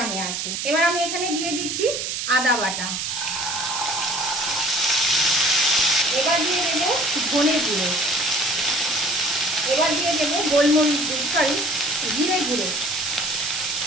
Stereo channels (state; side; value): noise; right; hiss, 3 dB below the sound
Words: আছে। এবার আমি এখানে দিয়ে দিচ্ছি আদা বাটা। এবার দিয়ে দেবো ধনে গুঁড়ো। এবার দিয়ে দেবো জিরে গুঁড়ো।